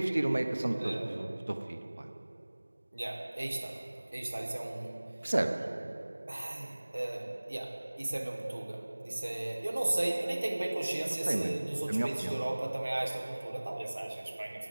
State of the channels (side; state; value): both; inverted; correlation -1.00